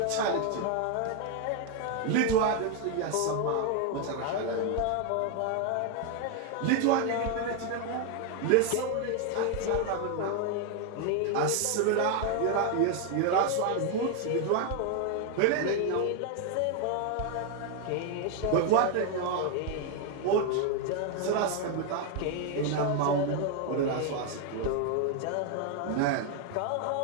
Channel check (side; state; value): both; different; correlation 0.01